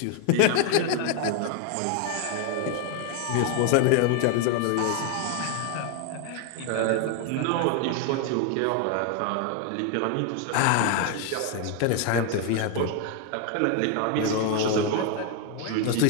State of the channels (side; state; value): both; different; correlation 0.01